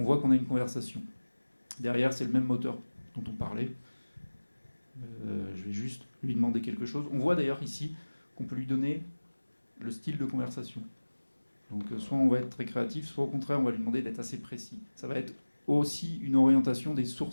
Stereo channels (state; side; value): inverted; both; correlation -1.00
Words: voit qu'on a une conversation. Derrière, c'est le même moteur dont on parlait. Je vais juste lui demander quelque chose. On voit d'ailleurs ici qu'on peut lui donner le style de conversation. Donc soit on va être très créatif, soit au contraire on va lui demander d'être assez précis. Ça va être aussi une orientation des